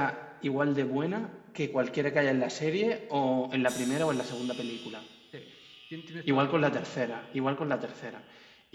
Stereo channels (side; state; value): both; identical; correlation 1.00